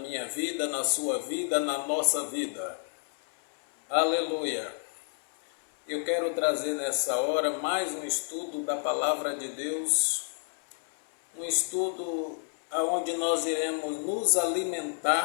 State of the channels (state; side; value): silent; right; 58 dB below the other